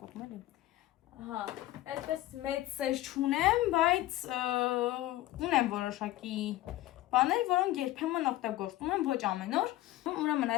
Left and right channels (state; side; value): quieter; right; 16.0 dB